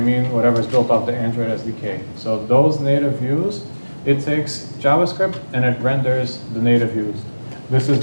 mean whatever's built off the Android SDK. So those native views, it takes JavaScript and it renders the native views. This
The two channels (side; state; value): both; inverted; correlation -1.00